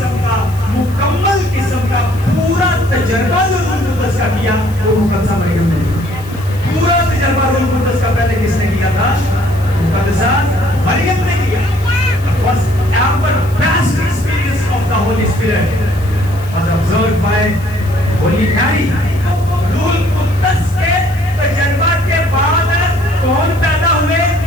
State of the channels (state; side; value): noise; left; hiss, 21 dB below the sound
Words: کا, مکمل قسم کا پورا تجربہ جو روح القدس کا کیا وہ مقدسہ مریم نے. پورا تجربہ روح القدس کا پہلے کس نے کیا تھا؟ مقدسہ مریم نے کیا. Was ever best experience of the Holy Spirit was observed by Holy Mary. روح القدس کے تجربہ کے بعد کون پیدا ہوئے؟